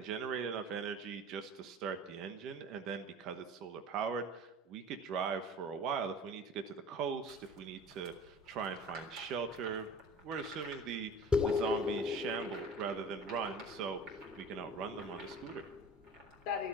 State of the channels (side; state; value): both; normal; correlation 0.41